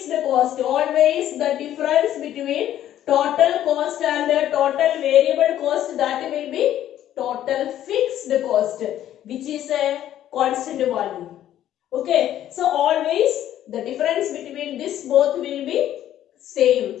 cost. Always the difference between total cost and the total variable cost, that will be total fixed cost, which is a constant value. Okay, so always the difference between this both will be same.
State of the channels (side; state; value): right; quieter; 11.9 dB